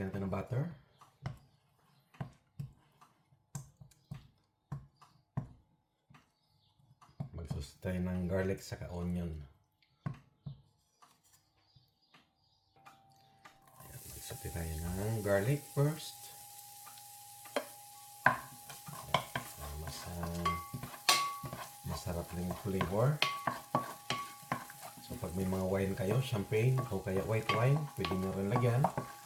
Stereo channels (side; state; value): both; identical; correlation 1.00